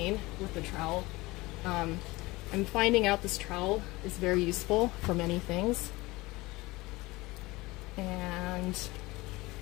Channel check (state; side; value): quieter; right; 21.3 dB